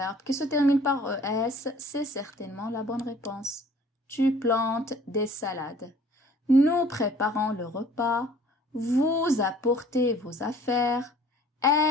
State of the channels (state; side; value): normal; both; correlation 0.53